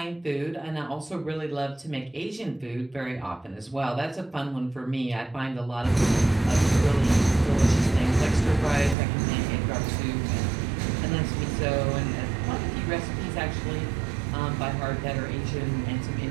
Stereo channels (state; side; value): drops out; left; at 9.0 s